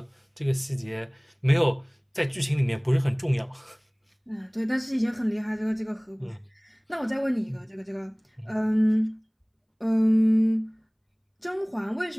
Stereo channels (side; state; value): both; identical; correlation 1.00